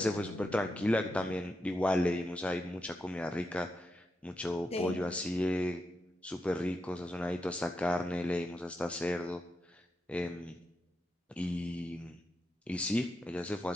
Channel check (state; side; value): normal; both; correlation 0.85